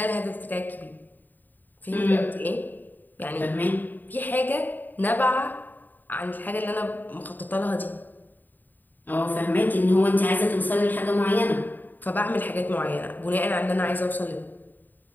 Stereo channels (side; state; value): right; late; 0.088 ms